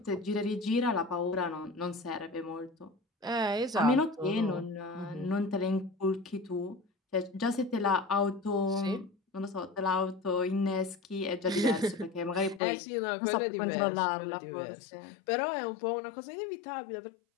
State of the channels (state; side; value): drops out; right; at 12.6 s